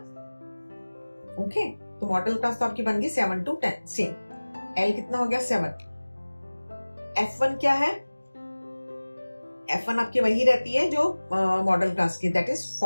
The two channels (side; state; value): both; inverted; correlation -1.00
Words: ओके, तो मॉडल क्लास तो आपकी बन गई 7 to 10 सेम। L कितना हो गया 7। F1 क्या है, F1 आपकी वही रहती है जो मॉडल क्लास की, दैट इज